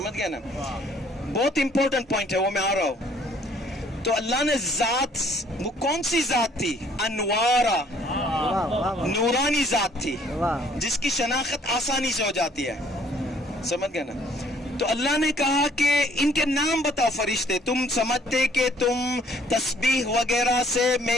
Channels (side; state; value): both; normal; correlation 0.60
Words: گئے نا, بہت امپورٹنٹ پوائنٹ ہے, وہ میں آ رہا ہوں. تو اللہ نے ذات, وہ کون سی ذات تھی؟ انوارا, نورانی ذات تھی, جس کی شناخت آسانی سے ہو جاتی ہے, سمجھ گئے نا. تو اللہ نے کہا کہ ان کے نام بتاؤ فرشتے, تم سمجھتے کہ تم تسبیح وغیرہ سے